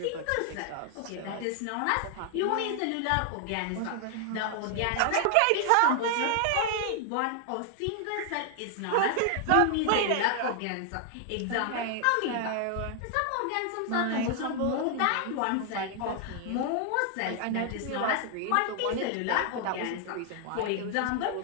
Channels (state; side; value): different; both; correlation 0.00